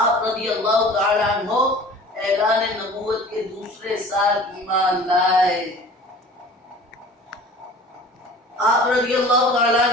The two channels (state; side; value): normal; both; correlation 0.44